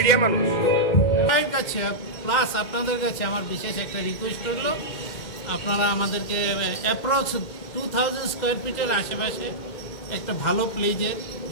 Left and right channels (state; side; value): late; right; 2.2 ms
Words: মানুষ। কাছে প্লাস আপনাদের কাছে আমার বিশেষ একটা রিকোয়েস্ট হলো, আপনারা আমাদেরকে অ্যাপ্রক্স 2000 স্কোয়ার ফিটের আশেপাশে একটা ভালো প্লেজে